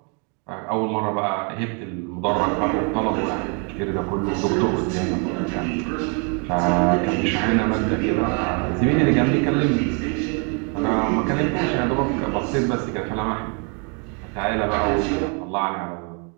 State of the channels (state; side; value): quieter; left; 36.8 dB